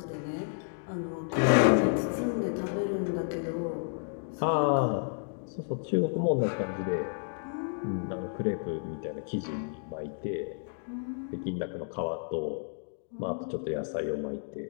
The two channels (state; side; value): silent; right; digital silence